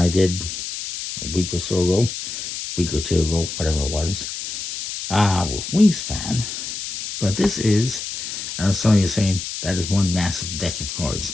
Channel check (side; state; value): left; noise; hiss, 7 dB below the sound